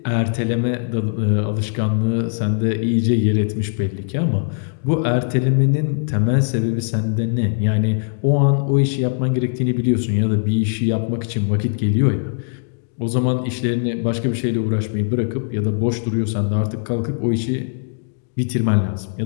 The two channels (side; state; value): right; silent; digital silence